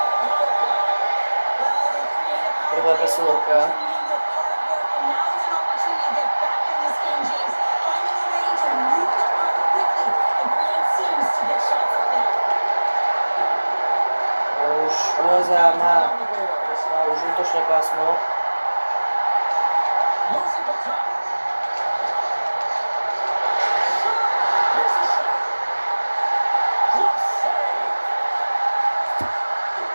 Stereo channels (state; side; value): inverted; both; correlation -1.00